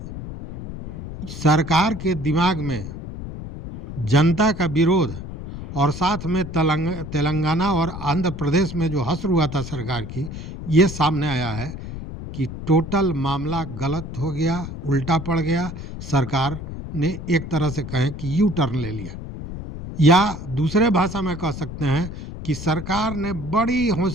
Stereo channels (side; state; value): left; noise; rumble, 9 dB below the sound